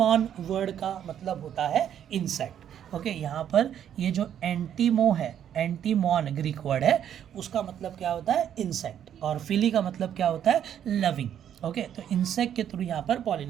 वर्ड का मतलब होता है इंसेक्ट। ओके, यहाँ पर ये जो एंटीमो है, एंटीमॉन ग्रीक वर्ड है, उसका मतलब क्या होता है? इंसेक्ट। और फिली का मतलब क्या होता है? लविंग। ओके, तो इंसेक्ट के थ्रू यहाँ पर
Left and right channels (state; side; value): quieter; left; 9.7 dB